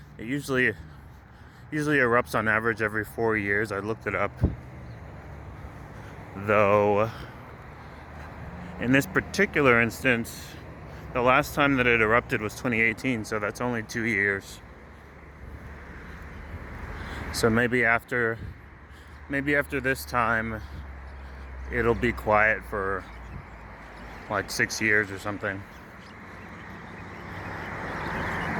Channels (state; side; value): identical; both; correlation 1.00